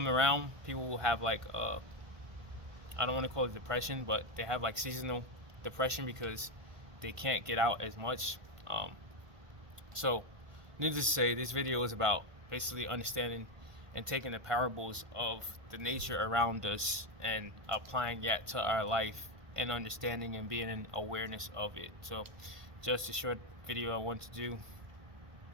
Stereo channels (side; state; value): left; late; 1.5 ms